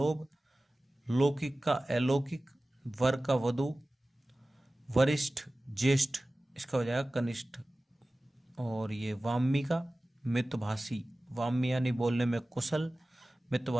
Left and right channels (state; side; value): normal; both; correlation 0.97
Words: लौकिक का अलौकिक, वर का वधु, वरिष्ठ ज्येष्ठ, इसका हो जाएगा कनिष्ठ, और ये वामी का मितभाषी, वामी यानी बोलने में कुशल,